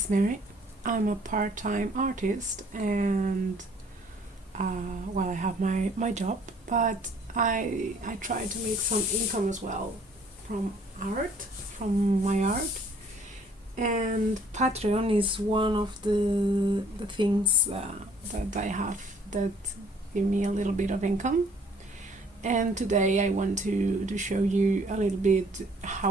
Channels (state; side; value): normal; both; correlation 0.59